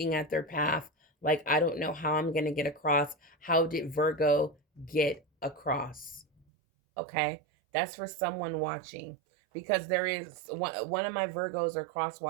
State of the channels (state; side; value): drops out; left; at 6.5 s